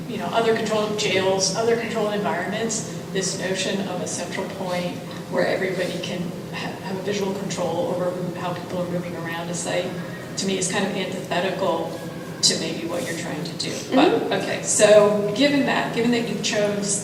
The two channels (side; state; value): both; identical; correlation 1.00